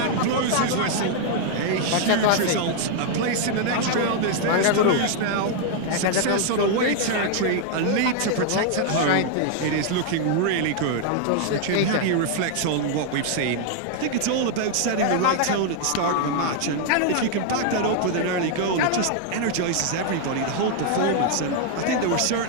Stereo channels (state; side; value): different; both; correlation 0.00